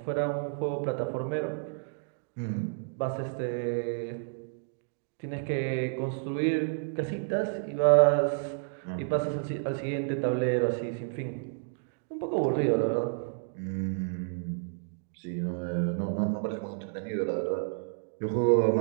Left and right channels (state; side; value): silent; left; digital silence